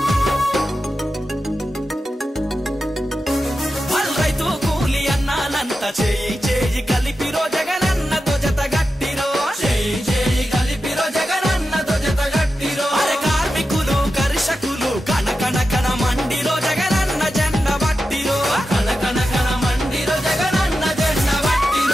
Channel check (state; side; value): normal; both; correlation 0.91